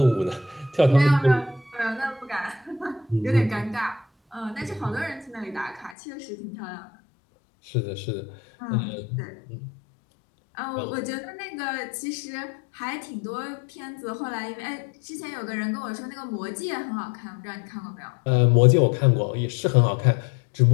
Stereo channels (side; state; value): right; drops out; at 6.0 s